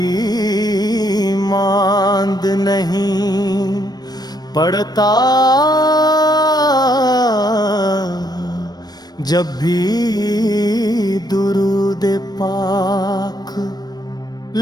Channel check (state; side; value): late; right; 0.19 ms